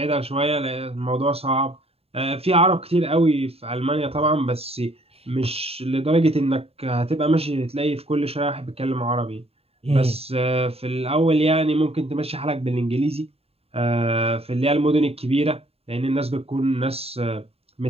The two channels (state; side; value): late; left; 0.29 ms